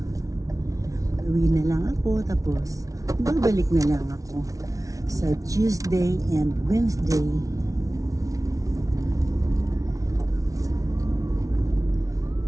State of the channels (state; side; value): late; left; 0.17 ms